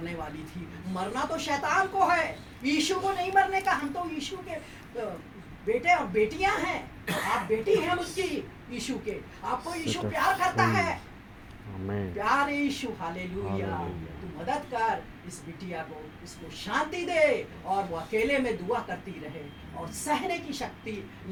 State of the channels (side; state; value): both; identical; correlation 1.00